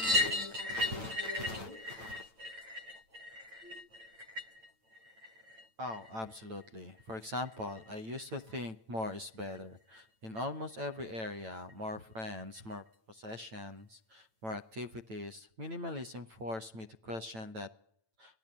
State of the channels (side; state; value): left; late; 9.0 ms